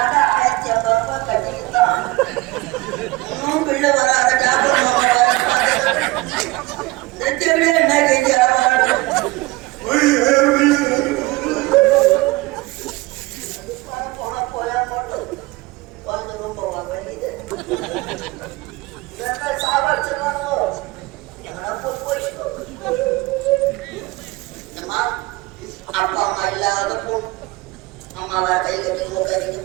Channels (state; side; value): quieter; left; 21.5 dB